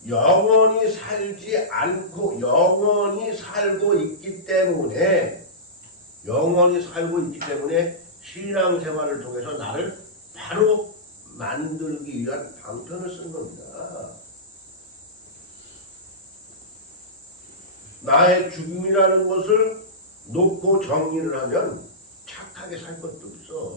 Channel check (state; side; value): normal; both; correlation -0.18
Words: 영원히 살지 않고 영원히 살고 있기 때문에 신앙생활을 통해서 나를 바로 만들기 위한 방편을 쓴 겁니다. 나의 죽음이라는 것을 놓고 정리를 하면 착하게 살 것도